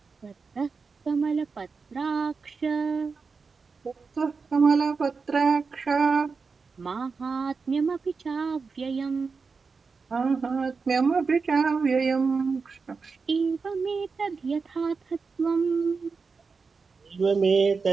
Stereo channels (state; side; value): quieter; left; 4.8 dB